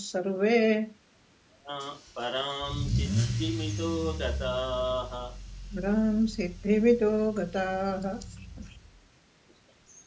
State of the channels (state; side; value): identical; both; correlation 1.00